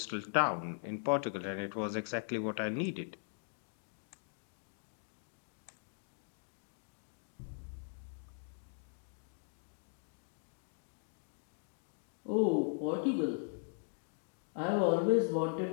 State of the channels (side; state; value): right; silent; digital silence